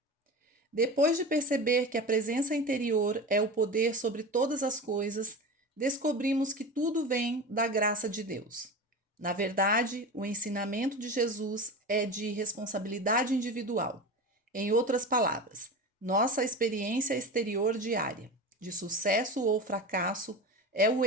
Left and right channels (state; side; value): normal; both; correlation 0.28